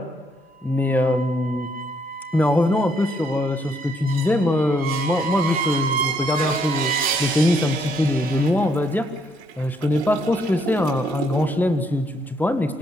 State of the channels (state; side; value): normal; both; correlation 0.71